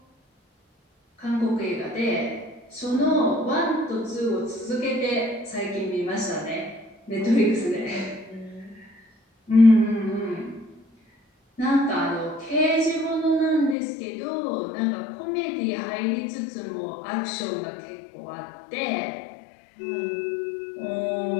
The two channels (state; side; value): drops out; right; at 13.8 s